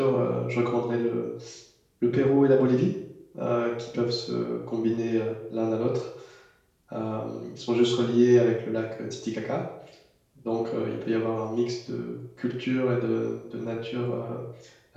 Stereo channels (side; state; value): both; identical; correlation 1.00